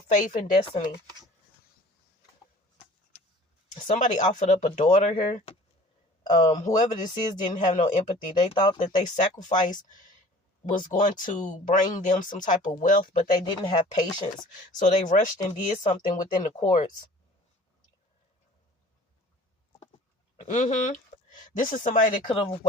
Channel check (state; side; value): normal; both; correlation 0.48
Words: faith and destiny. Somebody offered up a daughter here. Whoever this is didn't have no empathy. They thought that they sacrifice was going to bring them some type of wealth, but they didn't have patience. So they rushed and did something within the courts. This is somebody that could have